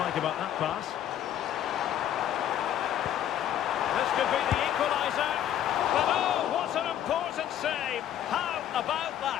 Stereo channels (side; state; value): right; quieter; 10.9 dB